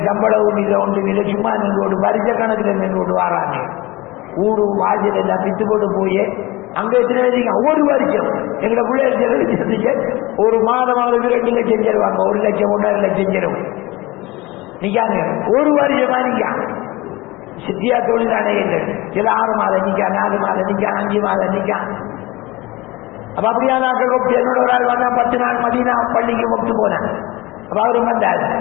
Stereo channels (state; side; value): quieter; right; 20.9 dB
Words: சம்பளம் ஒன்று இல்லை சும்மா நின்று ஒரு வருஷ கணக்கில் நின்று கொண்டு வராங்க. ஊடு வாசல் எல்லாம் பித்து போட்டு போய் அங்கே எத்தனை வரைக்கும் ஒரு வருஷம் எங்களை பிள்ளைகள் ஒரு மாதமாவது 2 லட்சம் தருவாங்க. 1 லட்சம் 1.5 லட்சம் தரும். நிக்காங்க ஒரு வருஷமா நிக்கா சித்தியா தொழிலானே இல்லை. சில 6 மாதம் நிக்கா 4 மாதம் நிக்கா 5 மாதம் நிக்கா. அப்ப அப்படியா நாட்கள் என்னோட ஒரு ஆள் வந்தா 10 நாள் மதீனா பள்ளிக்கு ஒட்டு போனேன். அப்ப அவரும் வந்தார்.